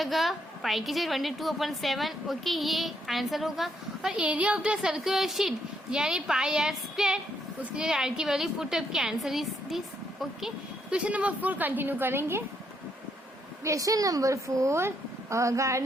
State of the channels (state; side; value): normal; both; correlation 0.75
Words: पाई की जगह 22/7। ओके, ये आंसर होगा। और area of the circular sheet यानी पाई आर स्क्वायर, उसकी जगह आर की वैल्यू पुटअप की, answer is this. Okay, question number 4 continue करेंगे। Question number 4,